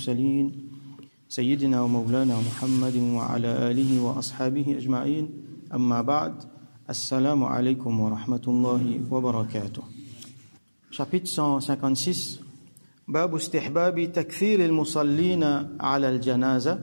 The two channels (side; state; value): both; inverted; correlation -1.00